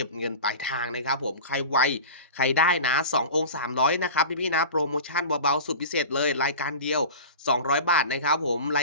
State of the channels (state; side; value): inverted; both; correlation -0.34